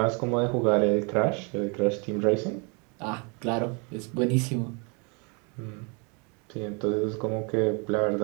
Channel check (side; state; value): left; quieter; 33.2 dB